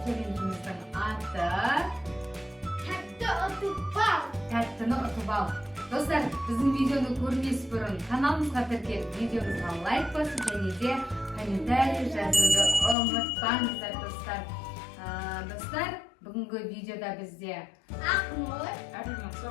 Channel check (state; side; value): drops out; right; at 13.0 s